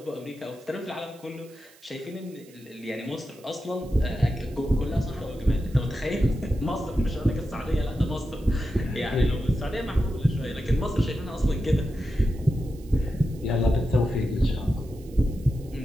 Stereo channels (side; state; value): right; noise; hiss, 26 dB below the sound